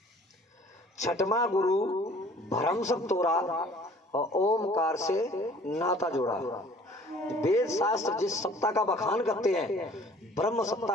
6वां गुरु भ्रम सब तोड़ा और ओमकार से नाता जोड़ा। वेद शास्त्र जिस सत्ता का बखान करते हैं, ब्रह्म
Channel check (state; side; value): normal; both; correlation 0.52